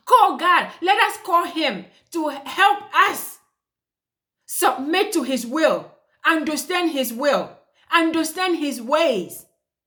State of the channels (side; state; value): both; identical; correlation 1.00